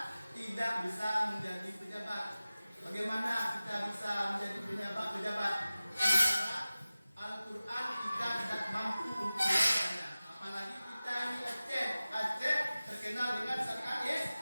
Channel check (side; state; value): both; inverted; correlation -0.97